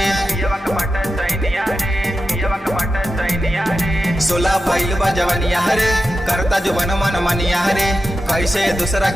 सोला भइल बा जवनिया रे करता जवन मन मनिया रे कैसे दूसरा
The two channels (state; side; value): normal; both; correlation 0.91